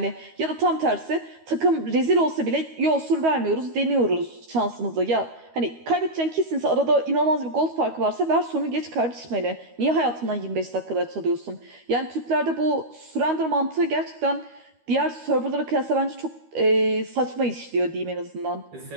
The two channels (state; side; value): late; left; 13 ms